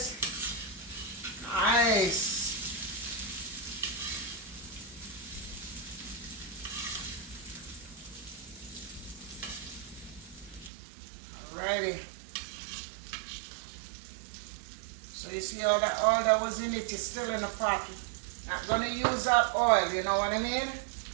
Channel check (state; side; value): drops out; left; at 10.7 s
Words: Nice. Alrighty. So you see all that oil that was in it is still in the pot. Not gonna use that oil, you know what I mean?